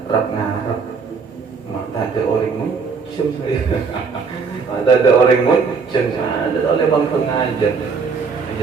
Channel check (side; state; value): left; quieter; 5.2 dB